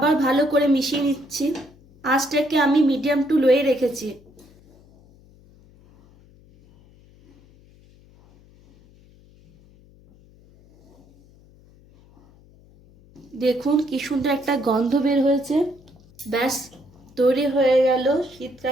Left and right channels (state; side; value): noise; left; hum, 27 dB below the sound